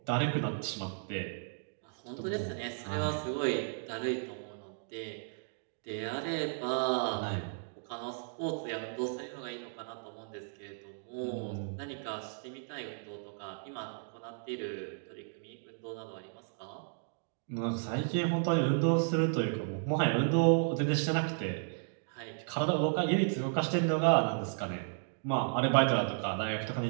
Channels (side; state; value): left; silent; digital silence